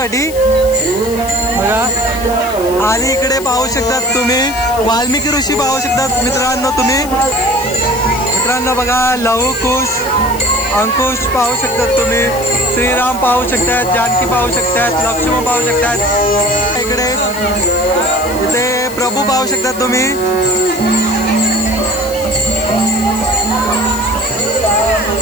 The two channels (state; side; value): noise; left; hiss, 14 dB below the sound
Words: बघा. आणि इकडे पाहू शकतात तुम्ही वाल्मिकी ऋषी पाहू शकतात मित्रांनो तुम्ही. मित्रांनो बघा, लहू कुश अंकुश पाहू शकतात तुम्ही. श्रीराम पाहू शकतात, जानकी पाहू शकतात, लक्ष्मण पाहू शकतात. इकडे इथे प्रभू पाहू शकतात तुम्ही.